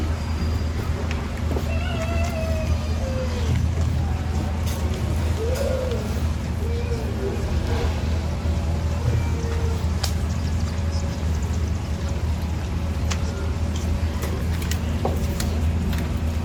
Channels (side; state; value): both; identical; correlation 1.00